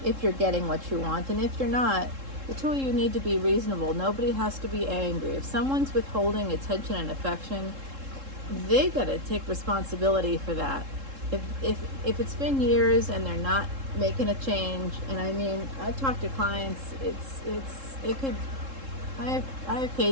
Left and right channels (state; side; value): late; left; 3.7 ms